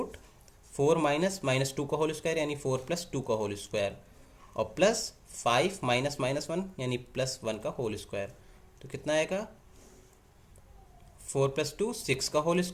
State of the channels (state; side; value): identical; both; correlation 1.00